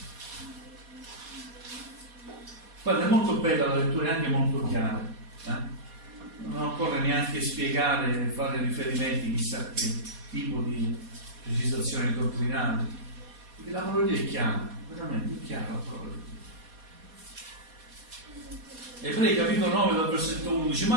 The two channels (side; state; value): left; late; 4.2 ms